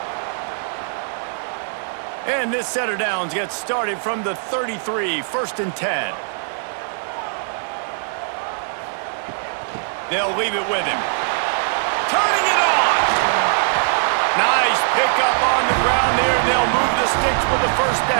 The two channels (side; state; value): left; silent; 60 dB below the other